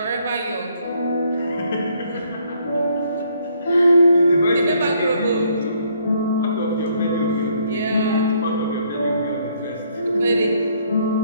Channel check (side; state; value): both; inverted; correlation -0.68